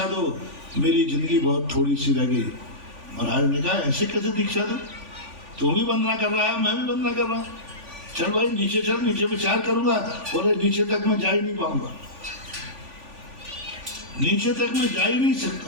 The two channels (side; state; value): left; late; 3.5 ms